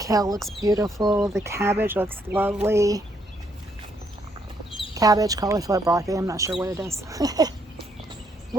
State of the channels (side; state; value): both; normal; correlation 0.72